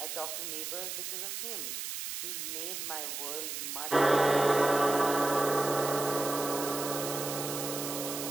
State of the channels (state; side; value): noise; right; hiss, 5 dB below the sound